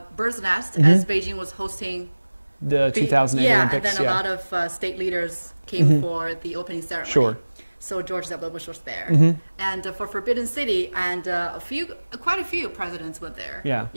bird's nest as Beijing was hosting the 2008 Olympics. And then a lot of state leaders came for the opening ceremony. Sure. So George W. Bush was there, and for Forbidden City, and quite a few presidents went there. Yeah.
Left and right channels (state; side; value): inverted; both; correlation -1.00